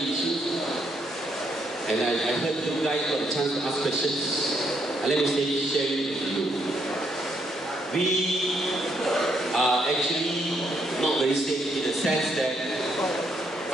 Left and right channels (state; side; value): normal; both; correlation 0.74